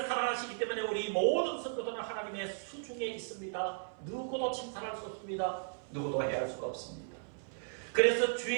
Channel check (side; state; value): left; silent; 54 dB below the other